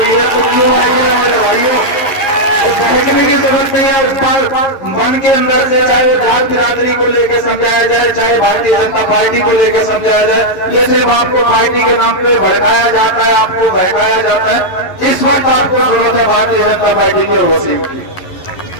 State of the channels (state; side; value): late; right; 11 ms